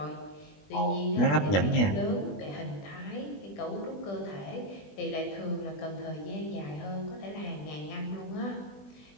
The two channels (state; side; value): late; right; 20 ms